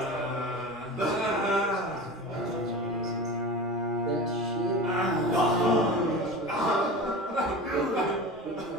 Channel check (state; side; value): normal; both; correlation 0.32